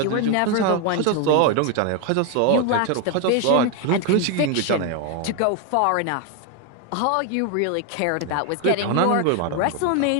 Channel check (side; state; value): both; different; correlation 0.01